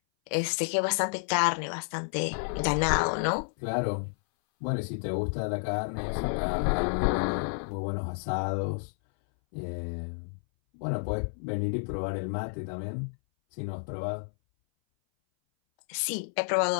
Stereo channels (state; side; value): silent; right; 58 dB below the other